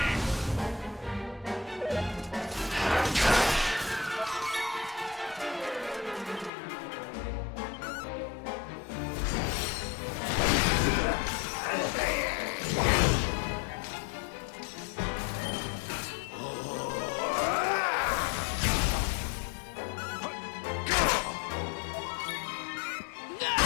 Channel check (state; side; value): drops out; right; at 6.5 s